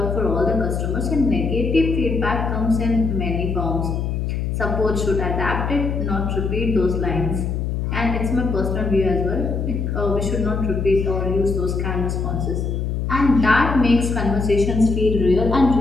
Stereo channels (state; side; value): noise; left; hum, 1 dB below the sound